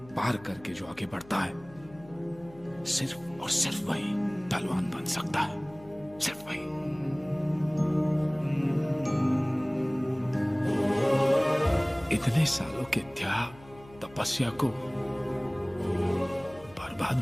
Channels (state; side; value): noise; left; hum, 22 dB below the sound